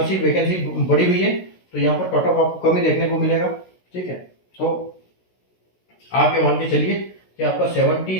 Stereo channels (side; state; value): right; late; 16 ms